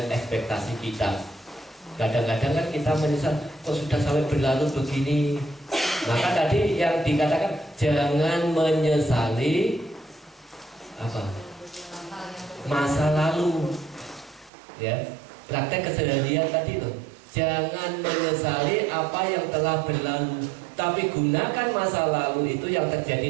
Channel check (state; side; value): drops out; left; at 14.5 s